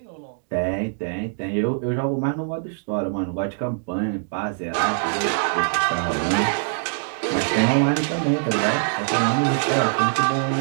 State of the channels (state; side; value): silent; left; digital silence